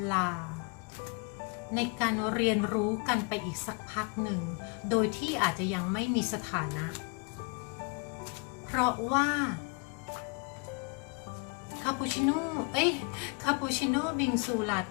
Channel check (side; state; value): right; quieter; 33.2 dB